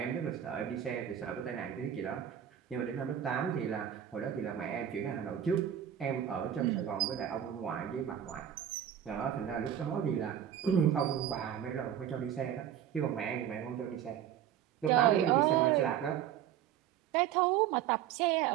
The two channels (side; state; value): left; quieter; 10.1 dB